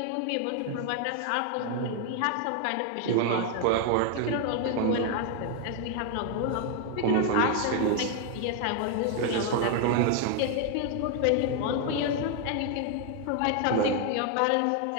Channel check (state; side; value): different; both; correlation 0.00